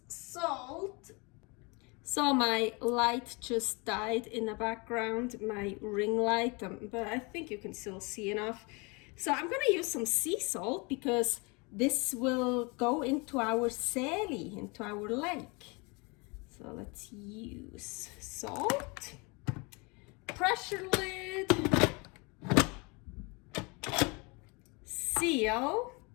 salt. So my light just died in the background, my ring light, but I think you can still see enough. So I'm gonna use some sea salt because this will go into our Seeli, into our lake. So let's use salt, pressure lid, seal,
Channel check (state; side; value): quieter; right; 29.0 dB